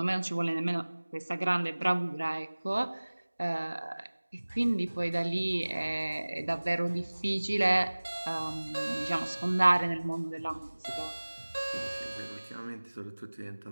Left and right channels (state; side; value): inverted; both; correlation -1.00